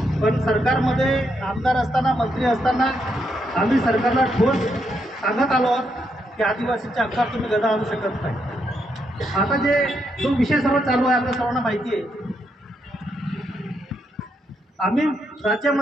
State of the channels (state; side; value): normal; both; correlation 0.79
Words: पण सरकारमध्ये आमदार असताना, मंत्री असताना आम्ही सरकारला ठोस सांगत आलो आहोत की आदिवासींच्या हक्कात तुम्ही गदा आणू शकत नाही. आता जो विषय सर्व चालू आहे आपल्या सर्वांना माहिती आहे. आम्ही